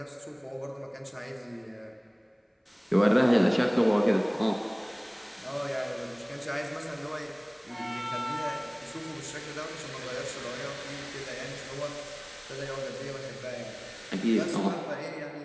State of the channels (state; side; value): identical; both; correlation 1.00